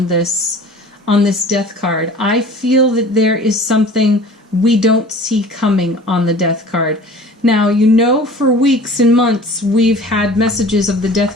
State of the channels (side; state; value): both; normal; correlation 0.43